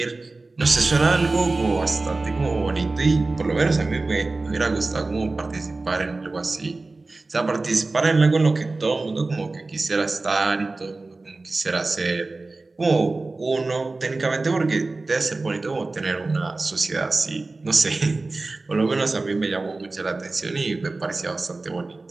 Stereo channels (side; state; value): left; quieter; 3.4 dB